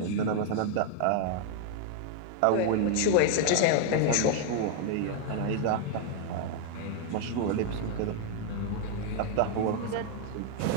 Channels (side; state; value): both; different; correlation 0.00